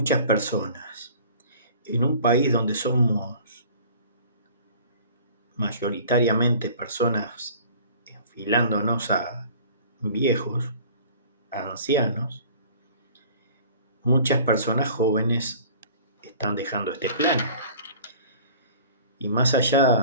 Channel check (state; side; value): inverted; both; correlation -0.47